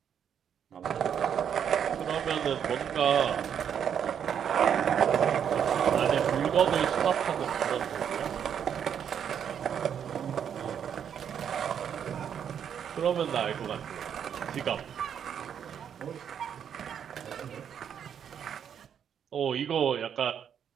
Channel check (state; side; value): quieter; left; 8.4 dB